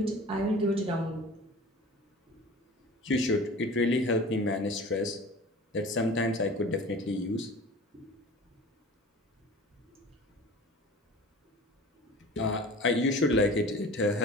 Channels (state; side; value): normal; both; correlation 0.39